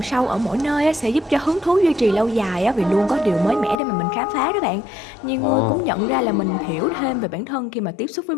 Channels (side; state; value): right; drops out; at 3.8 s